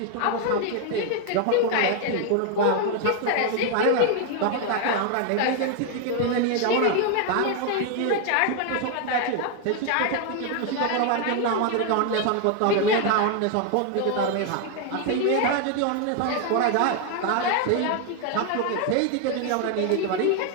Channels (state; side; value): different; both; correlation 0.00